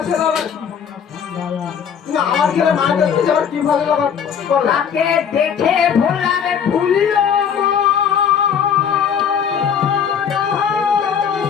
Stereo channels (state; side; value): quieter; right; 7.6 dB